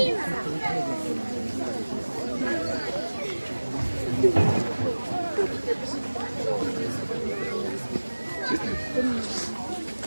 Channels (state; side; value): inverted; both; correlation -1.00